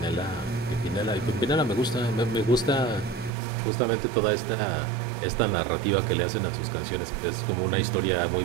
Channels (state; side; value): drops out; left; at 3.3 s